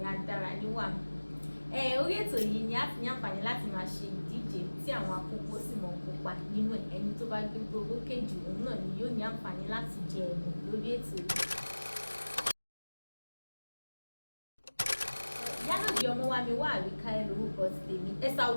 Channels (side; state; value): both; inverted; correlation -1.00